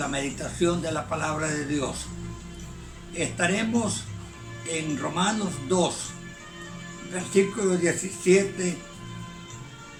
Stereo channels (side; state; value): both; identical; correlation 1.00